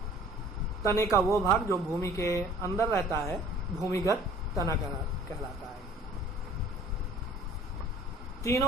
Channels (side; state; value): both; normal; correlation 0.51